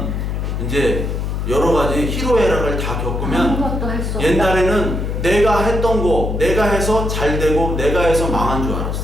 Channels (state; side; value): noise; left; hum, 2 dB below the sound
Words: 이제 여러 가지 희로애락을 다 겪으면 옛날에는 내가 했던 거 내가 해서 잘 되고 내가 해서 망한 줄